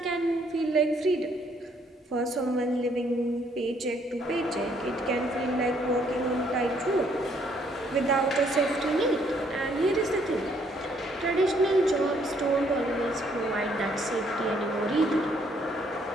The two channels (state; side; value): normal; both; correlation 0.67